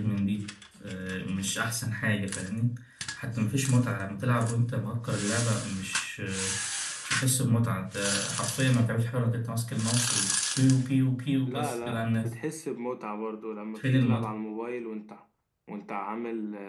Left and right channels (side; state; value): both; identical; correlation 1.00